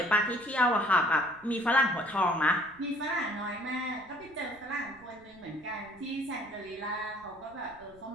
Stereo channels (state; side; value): noise; right; rumble, 27 dB below the sound